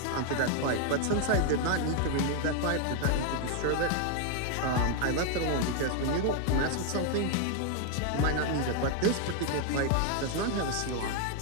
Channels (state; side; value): different; both; correlation 0.00